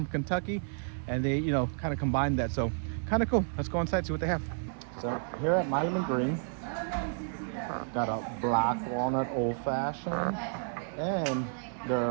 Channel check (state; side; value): silent; left; digital silence